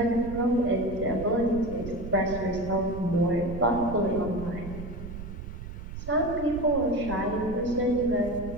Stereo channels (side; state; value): right; noise; rumble, 10 dB below the sound